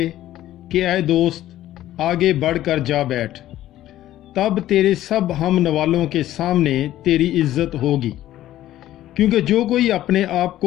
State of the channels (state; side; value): quieter; right; 13.7 dB